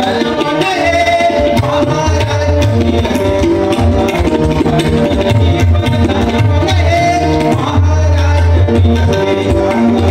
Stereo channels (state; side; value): identical; both; correlation 1.00